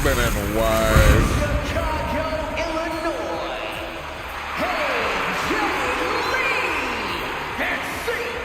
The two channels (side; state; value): both; identical; correlation 1.00